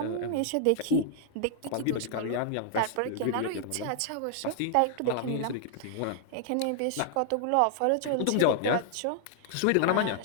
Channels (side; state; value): both; different; correlation -0.01